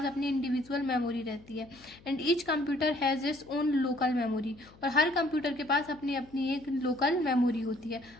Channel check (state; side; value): noise; left; hum, 24 dB below the sound